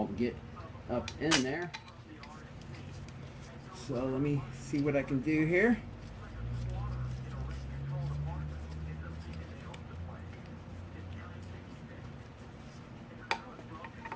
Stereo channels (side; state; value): both; identical; correlation 1.00